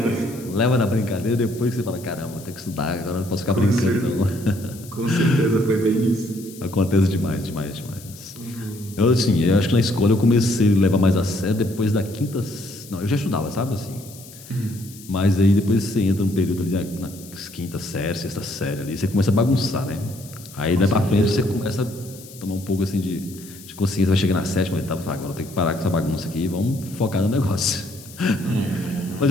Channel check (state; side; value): noise; left; hiss, 19 dB below the sound